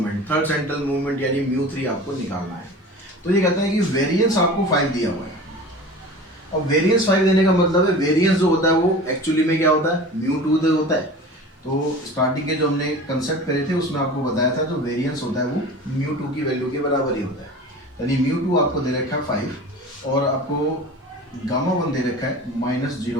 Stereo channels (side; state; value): both; normal; correlation 0.37